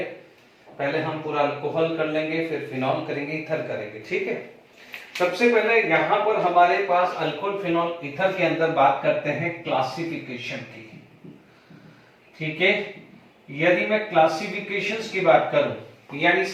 पहले हम पूरा अल्कोहल कर लेंगे, फिर फिनॉल करेंगे, ईथर करेंगे। ठीक है, सबसे पहले यहाँ पर हमारे पास अल्कोहल, फिनॉल, ईथर के अंदर बात करते हैं क्लासिफिकेशन की। ठीक है, यदि मैं क्लासिफिकेशंस की बात करूं, यानी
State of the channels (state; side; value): identical; both; correlation 1.00